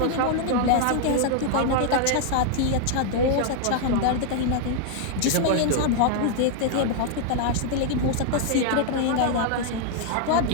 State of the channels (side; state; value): both; different; correlation 0.00